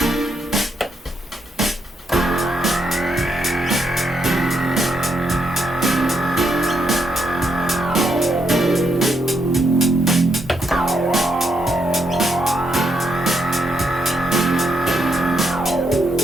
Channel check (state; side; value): normal; both; correlation 0.78